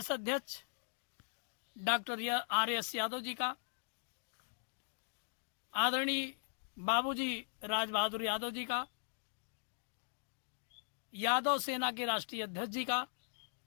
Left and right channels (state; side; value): silent; right; digital silence